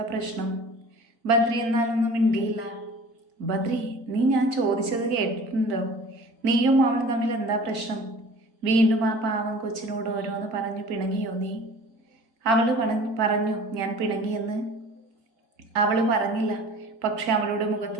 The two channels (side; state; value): left; late; 4.2 ms